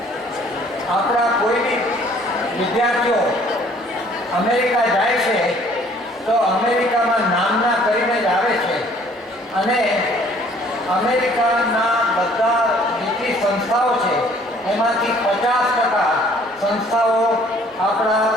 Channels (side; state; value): both; normal; correlation 0.57